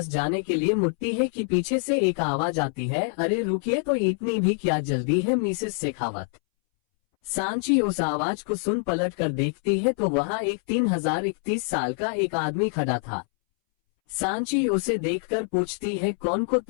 जाने के लिए मुड़ती है कि पीछे से एक आवाज आती है, अरे रुकिए तो इतनी भी क्या जल्दी है मिसेस शेखावत। सांची उस आवाज को सुन पलट कर देखती है तो वहाँ एक 3031 साल का एक आदमी खड़ा था। सांची उसे देखकर पूछती है कौन को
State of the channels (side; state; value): right; silent; 61 dB below the other